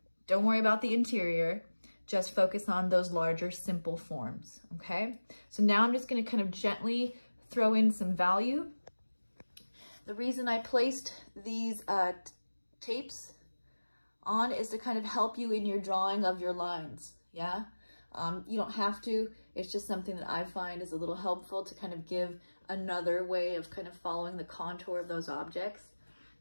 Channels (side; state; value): both; inverted; correlation -1.00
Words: don't worry about the interior, just focus on those larger simple forms, okay? So now I'm just gonna kind of gently throw in some value. The reason I placed these tapes on is to kind of help you in your drawing of your lines, yeah? You don't have to, it's just something that I find is a little helpful to kind of give another way of kind of following the contour of those objects